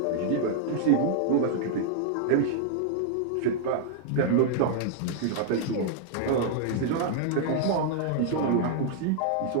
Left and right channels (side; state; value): both; different; correlation -0.01